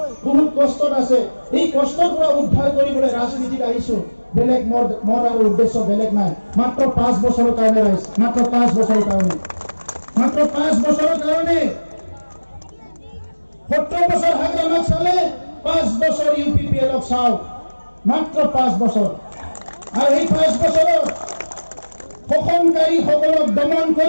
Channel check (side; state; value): both; inverted; correlation -1.00